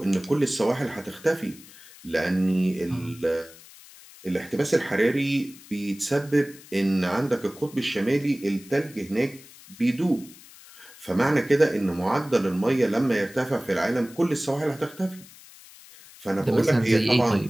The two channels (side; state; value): left; noise; hiss, 21 dB below the sound